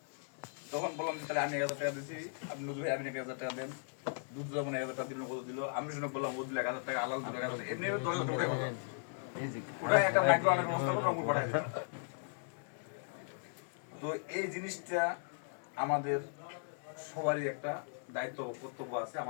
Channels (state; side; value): silent; right; digital silence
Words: তখন বললাম তাহলে আমি 1000 টাকা দিচ্ছি, আপনি নজুবাই আপনি 1000 টাকা দেন। দুধ মনে 1000 টাকা দিল, কত দিল, আমি শুনে বললাম ও দিল 1000 টাকা, আলাল দিল 1000 টাকা, এমনি 10,000 টাকা ওটাই একটা মাইক্রো অনেক ব্যবস্থা করে অঙ্কুর পাঠাই দিল। তো এই জিনিসটা আমাদের সবারই একটা দায়িত্ব কর্তব্য আছে